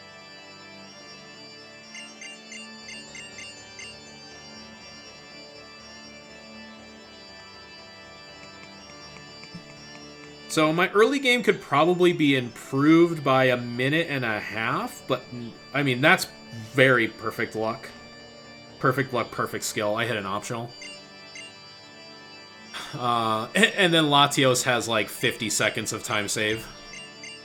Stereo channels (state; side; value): identical; both; correlation 1.00